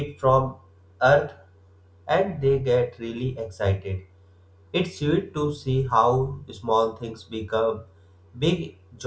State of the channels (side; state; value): both; identical; correlation 1.00